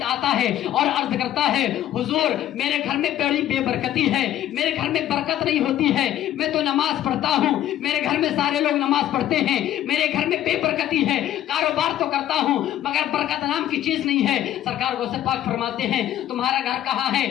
آتا ہے اور عرض کرتا ہے حضور میرے گھر میں بڑی بے برکتی ہے، میرے گھر میں برکت نہیں ہوتی ہے، میں تو نماز پڑھتا ہوں، میرے گھر میں سارے لوگ نماز پڑھتے ہیں، میرے گھر میں بے برکتی ہے، کاروبار تو کرتا ہوں مگر برکت نام کی چیز نہیں ہے۔ سرکار غوث پاک فرماتے ہیں تمہارا گھر کہاں ہے؟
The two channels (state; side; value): quieter; right; 12.2 dB